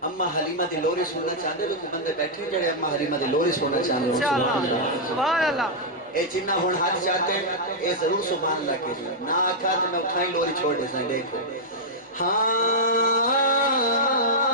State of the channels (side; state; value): both; normal; correlation -0.07